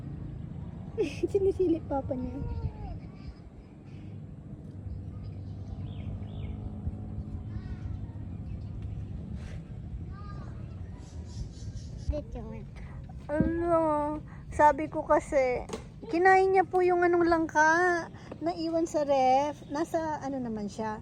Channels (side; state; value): both; identical; correlation 1.00